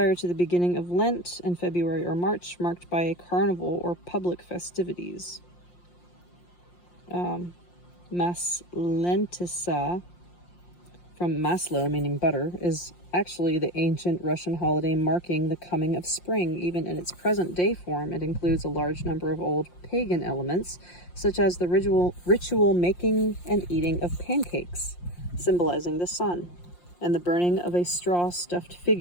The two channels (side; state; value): right; late; 5.7 ms